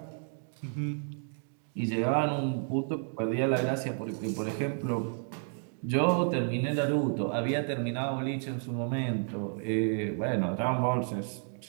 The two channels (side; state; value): left; silent; 57 dB below the other